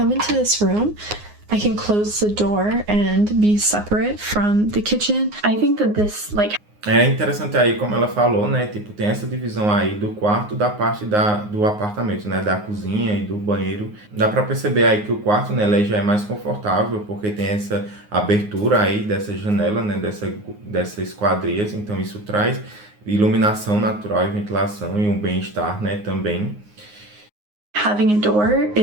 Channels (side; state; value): left; late; 9.6 ms